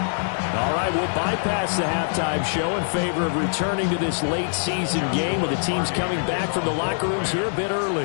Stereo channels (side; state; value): right; silent; digital silence